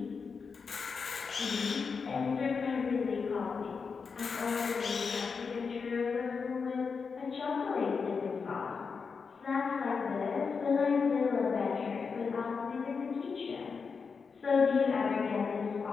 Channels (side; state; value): right; quieter; 5.4 dB